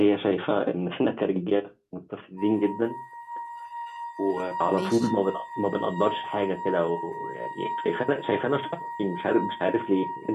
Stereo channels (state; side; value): identical; both; correlation 1.00